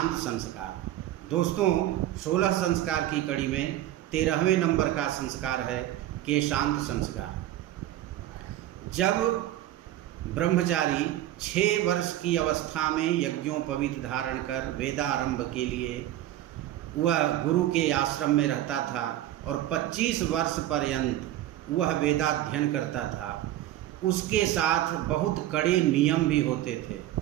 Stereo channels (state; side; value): quieter; left; 13.6 dB